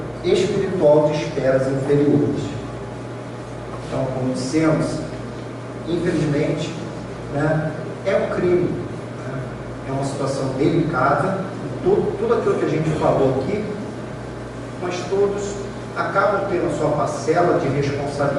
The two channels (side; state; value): both; identical; correlation 1.00